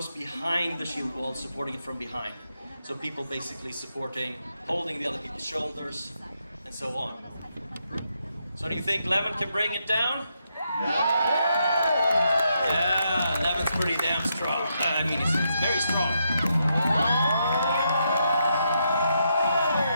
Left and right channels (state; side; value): inverted; both; correlation -0.80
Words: behind the shield wall, supporting it from behind. So people basically holding the other people's shoulders, and so on. So do you think Levent can bring it down? Yeah, Levent's pretty damn strong. I mean, he's very strong.